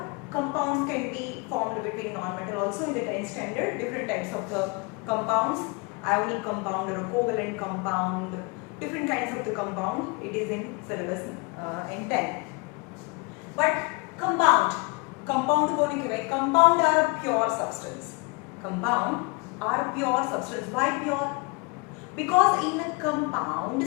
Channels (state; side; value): quieter; right; 29.2 dB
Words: compounds can be formed between non-metal also in the 10th standard. Different types of the compounds, ionic compound or a covalent compound, different kinds of the compound. It is in syllabus in 10. But compound को नहीं कहते. Compound are a pure substance. Compound are pure substance. Why pure? Because in a compound